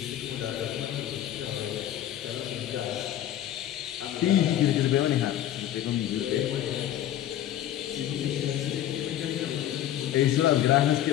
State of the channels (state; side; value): quieter; right; 11.9 dB